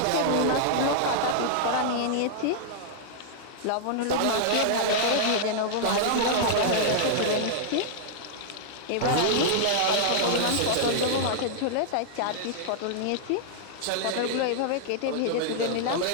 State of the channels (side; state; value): both; different; correlation -0.01